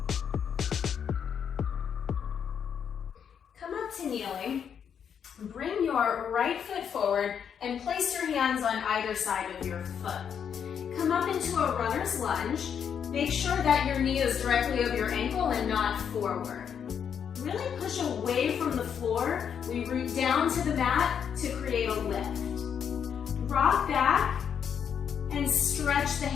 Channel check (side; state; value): right; quieter; 7.8 dB